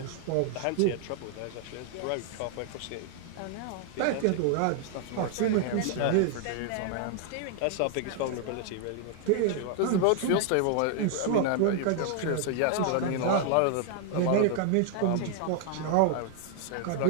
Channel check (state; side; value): different; both; correlation -0.01